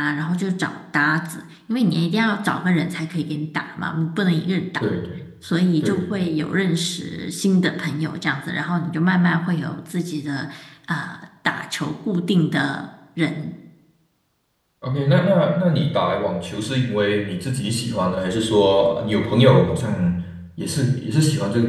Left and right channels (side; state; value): both; identical; correlation 1.00